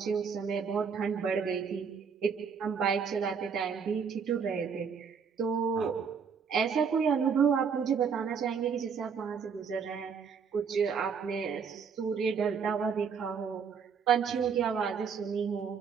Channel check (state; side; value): quieter; left; 6.3 dB